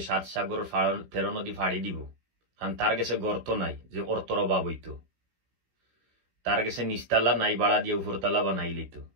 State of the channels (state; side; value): late; left; 17 ms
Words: 7 সাগরের 13 নদী ফাড়ি দিব কারণ তার গেছে গর্ত নাই যে অর্থর অভাব হইতো তার গেছে নিচতলা নাই বাড়া দিয়ে উপরতলা বানাই লিত